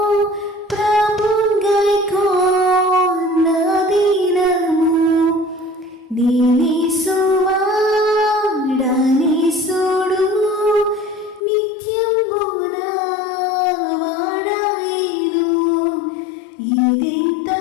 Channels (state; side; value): drops out; right; at 11.4 s